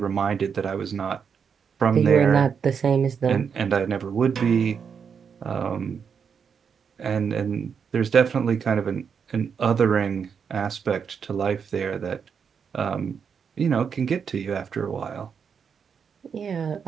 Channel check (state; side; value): quieter; left; 6.7 dB